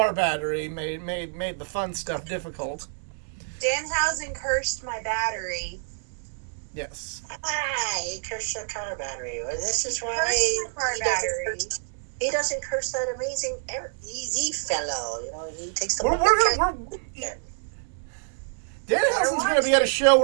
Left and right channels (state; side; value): silent; left; digital silence